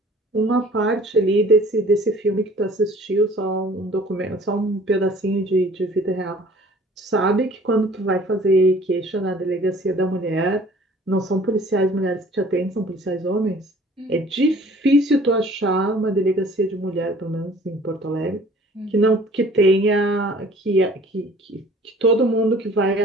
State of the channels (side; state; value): both; normal; correlation 0.51